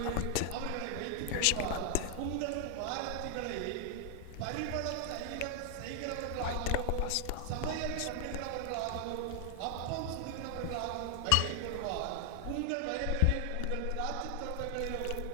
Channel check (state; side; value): different; both; correlation 0.00